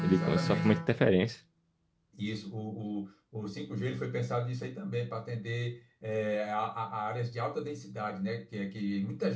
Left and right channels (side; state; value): both; identical; correlation 1.00